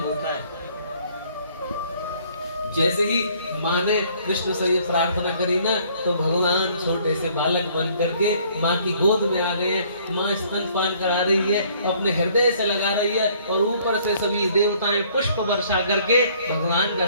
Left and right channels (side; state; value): both; inverted; correlation -0.60